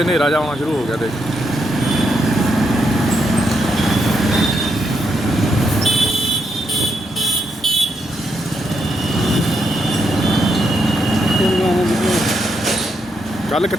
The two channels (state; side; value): normal; both; correlation 0.80